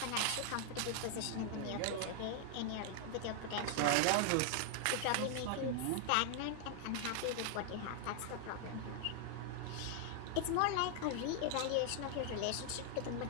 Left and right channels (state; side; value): different; both; correlation 0.00